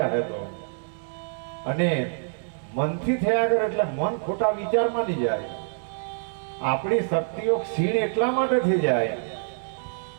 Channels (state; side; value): silent; left; digital silence